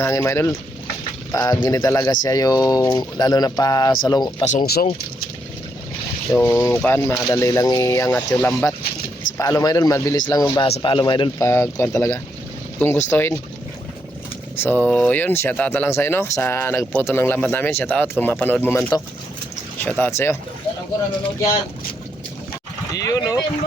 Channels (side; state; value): both; normal; correlation 0.78